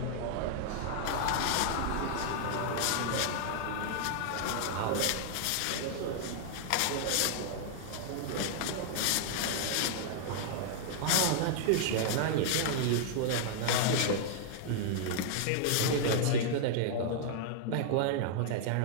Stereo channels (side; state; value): both; different; correlation -0.01